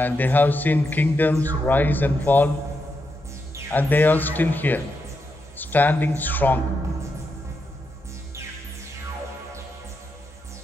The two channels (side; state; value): both; normal; correlation 0.84